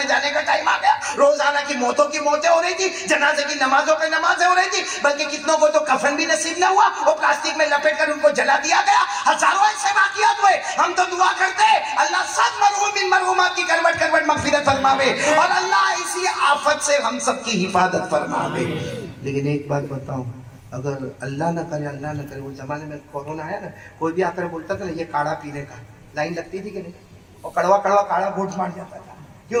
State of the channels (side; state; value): both; identical; correlation 1.00